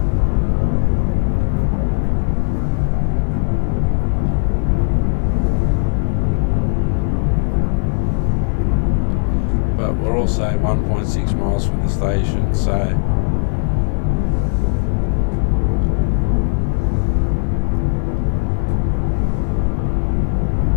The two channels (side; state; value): right; silent; 55 dB below the other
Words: But we're also 1.6 miles from the station, so